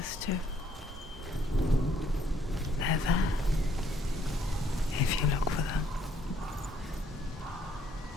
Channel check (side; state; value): both; normal; correlation 0.67